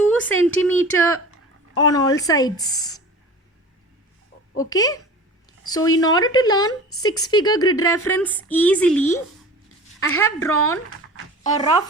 centimeter on all sides. Okay, so in order to learn 6-figure grid reference easily, I have drawn a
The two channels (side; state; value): both; normal; correlation 0.38